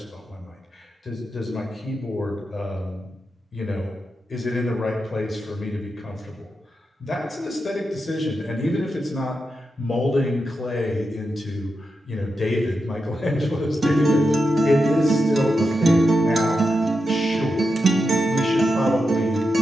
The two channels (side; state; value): both; normal; correlation 0.88